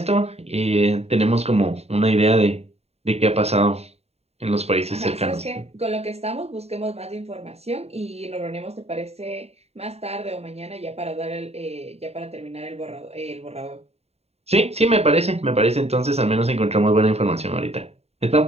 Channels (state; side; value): late; left; 0.30 ms